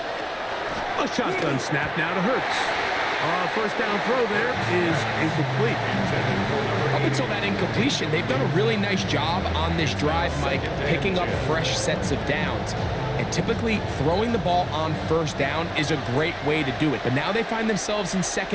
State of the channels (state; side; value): identical; both; correlation 1.00